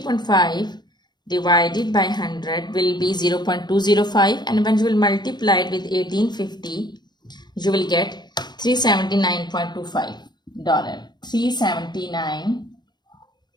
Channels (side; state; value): right; late; 0.21 ms